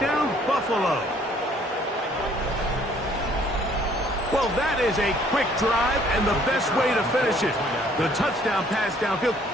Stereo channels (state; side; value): normal; both; correlation 0.60